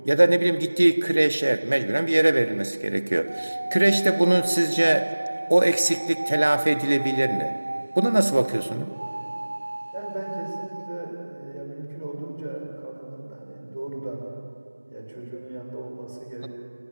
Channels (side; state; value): both; inverted; correlation -1.00